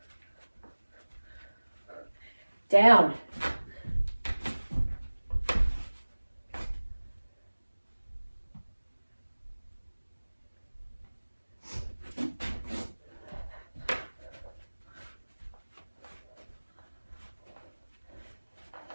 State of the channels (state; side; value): inverted; both; correlation -1.00